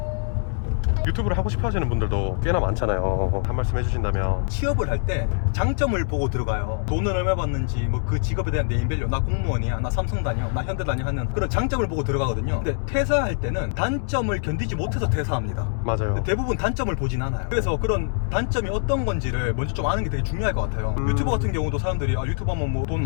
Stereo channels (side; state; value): right; silent; digital silence